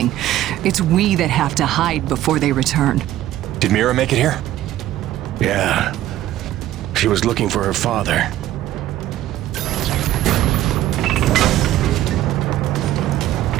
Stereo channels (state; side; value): quieter; left; 13.7 dB